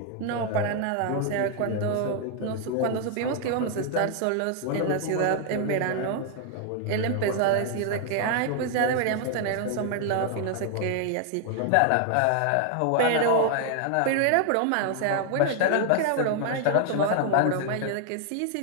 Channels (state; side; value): different; both; correlation 0.00